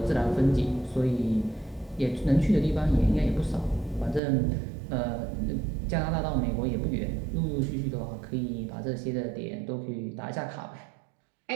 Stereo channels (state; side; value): drops out; left; at 4.2 s